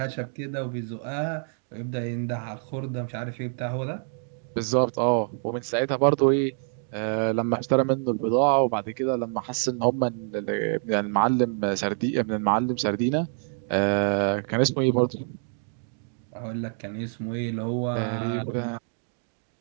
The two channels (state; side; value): silent; left; 60 dB below the other